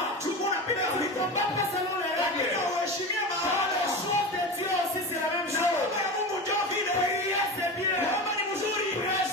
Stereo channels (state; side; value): normal; both; correlation 0.26